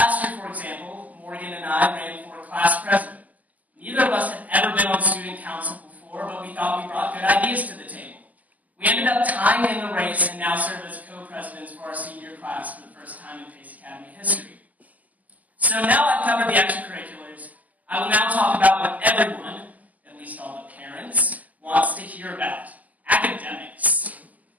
for example, Morgan and I ran for class president. Neither of us had ever been on student council before, but we thought we brought good ideas to the table. We We ended up tying in the race and now serve as co-presidents for our senior class for the first time in Pace Academy history. So now I've covered the extracurriculars, I will now talk about what everyone, at least all the parents, wants to hear about: academics.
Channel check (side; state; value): left; late; 0.078 ms